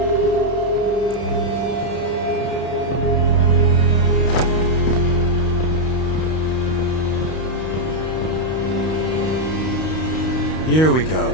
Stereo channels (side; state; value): right; late; 32 ms